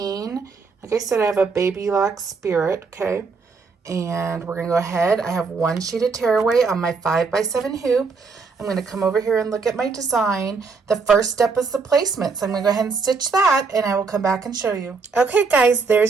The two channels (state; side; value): quieter; left; 4.7 dB